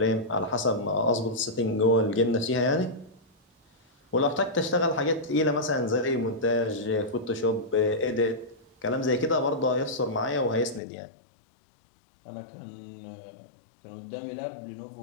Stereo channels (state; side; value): drops out; right; at 10.8 s